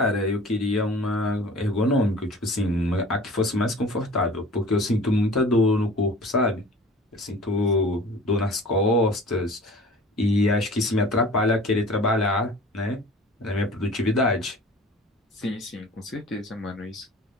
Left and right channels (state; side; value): normal; both; correlation 0.44